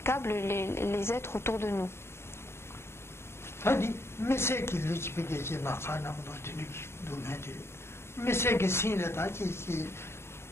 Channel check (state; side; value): late; right; 0.12 ms